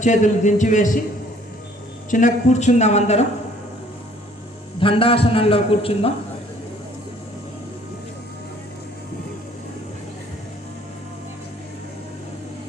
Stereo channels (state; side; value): normal; both; correlation 0.58